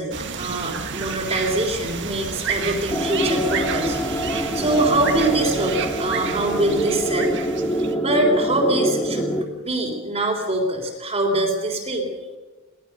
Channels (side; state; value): both; normal; correlation 0.25